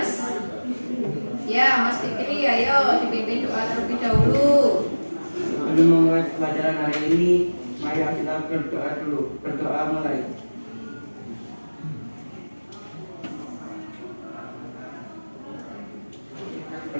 Ya, Mas Fikri, ayo dipimpin doa terlebih dahulu. Sebelum memulai pelajaran hari ini, mari kita berdoa dulu. Berdoa mulai.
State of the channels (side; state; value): both; inverted; correlation -1.00